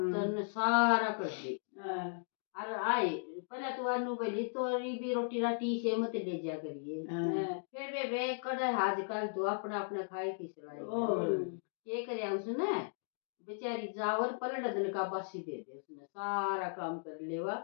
सारा कर दी और आए पहले तो अनु बोली तोरी भी रोटी राटी से मत ले जा करिए फिर बेबे कड़े आजकल तो अपना अपना खाए की सलाई ये करे उसने बेचारी जावर पलट दिन का बासी दे दे उसने सारा काम कर लेवा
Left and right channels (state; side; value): silent; right; digital silence